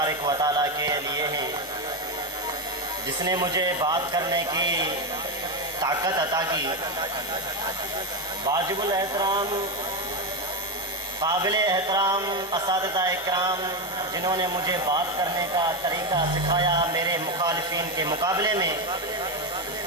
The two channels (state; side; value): normal; both; correlation 0.11